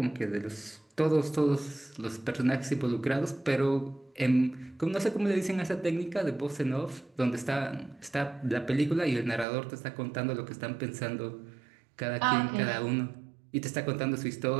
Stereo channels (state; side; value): drops out; left; at 9.5 s